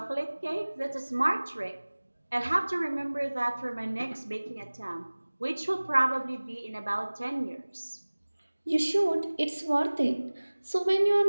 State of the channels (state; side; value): inverted; both; correlation -1.00